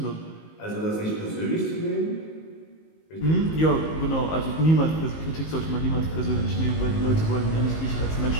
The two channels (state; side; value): late; right; 19 ms